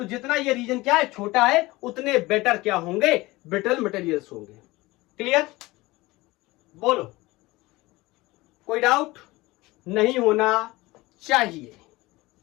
जितना ये रीजन क्या है, छोटा है, उतने बेटर क्या होंगे, ब्रिटल मटेरियल्स होंगे। क्लियर? बोलो, कोई डाउट नहीं होना चाहिए।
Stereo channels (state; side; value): quieter; right; 20.6 dB